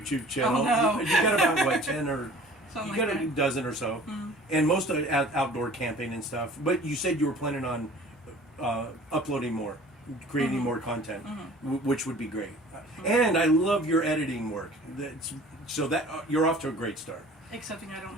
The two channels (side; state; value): both; normal; correlation 0.47